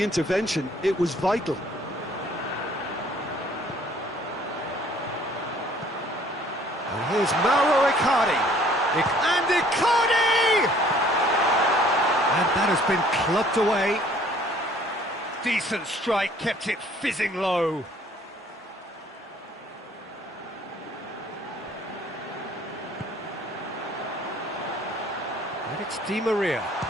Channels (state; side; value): normal; both; correlation 0.57